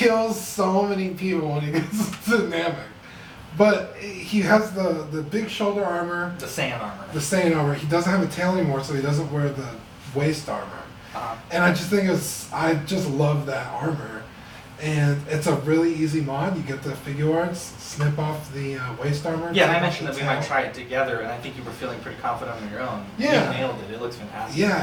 so many people when he gets to Namek. But he has the big shoulder armor, The Saiyan armor. the Saiyan armor. He doesn't have a tail anymore, so he doesn't wear the waist armor. Uh-huh. And I just think I just love that armor. And it's a really easy mod. You get the figure arts, snip off the waist armor. Yeah, take and I off mentioned the that we might tail. try it together, and I think you were feeling pretty confident on your own. Yeah. You nailed it. It looks fantastic.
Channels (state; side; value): identical; both; correlation 1.00